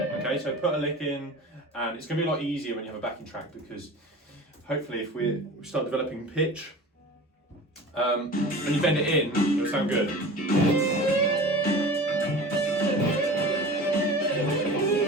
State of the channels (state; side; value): normal; both; correlation 0.37